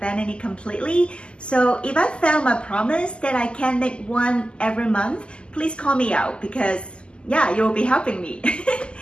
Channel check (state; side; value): late; right; 0.051 ms